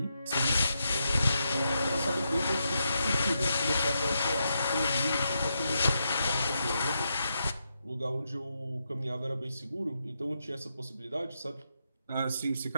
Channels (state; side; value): inverted; both; correlation -0.84